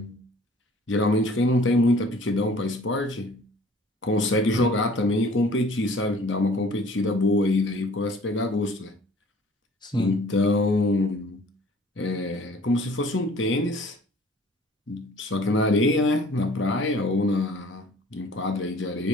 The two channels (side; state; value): both; normal; correlation 0.52